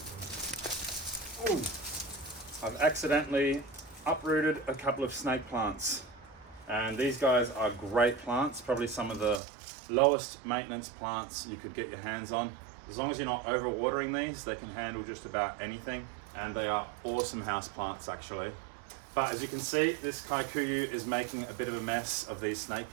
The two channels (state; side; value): drops out; left; at 9.4 s